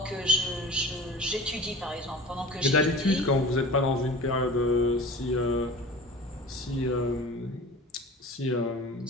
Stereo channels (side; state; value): both; normal; correlation 0.39